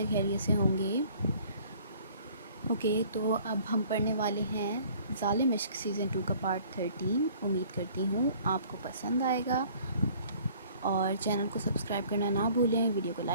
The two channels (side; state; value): both; inverted; correlation -0.54